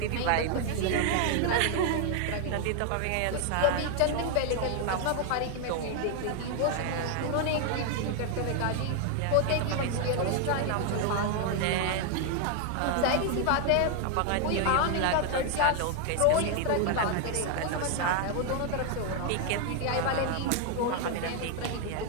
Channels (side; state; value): both; different; correlation 0.00